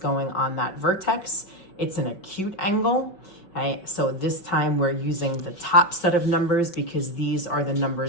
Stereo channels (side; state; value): right; late; 5.3 ms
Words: on that vertex. It's an acute angle. Okay, so this time we're using the top set of numbers because these are the